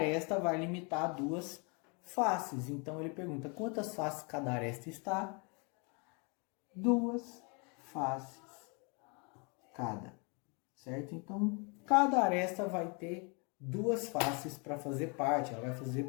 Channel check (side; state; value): right; quieter; 33.4 dB